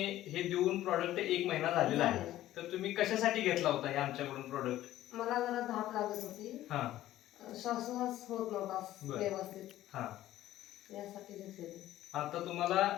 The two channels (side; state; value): right; quieter; 14.1 dB